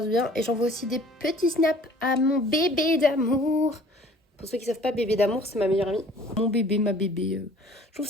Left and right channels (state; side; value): normal; both; correlation 0.51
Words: du bien. Et j'envoie aussi des petits snaps à mon bébé d'amour. Pour ceux qui savent pas, bébé d'amour, c'est ma meilleure amie. Mon bébé, ma bébé. Je trouve